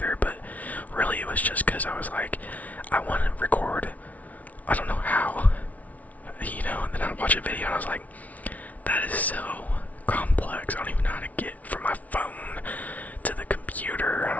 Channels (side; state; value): right; late; 0.071 ms